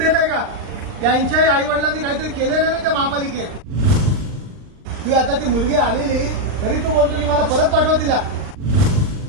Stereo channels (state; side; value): late; left; 40 ms